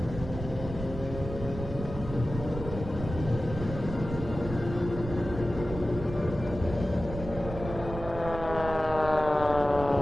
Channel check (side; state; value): right; noise; rumble, 9 dB below the sound